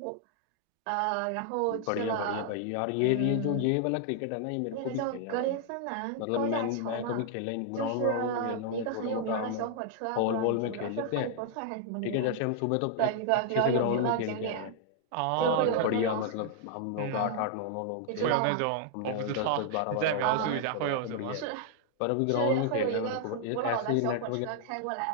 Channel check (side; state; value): both; different; correlation -0.01